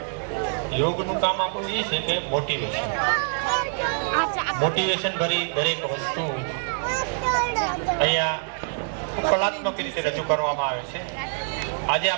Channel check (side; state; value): left; silent; 56 dB below the other